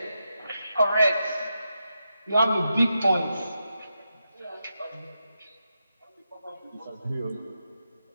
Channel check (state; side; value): inverted; both; correlation -0.86